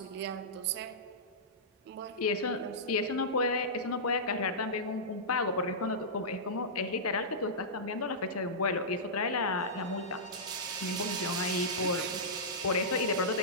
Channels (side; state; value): both; normal; correlation -0.16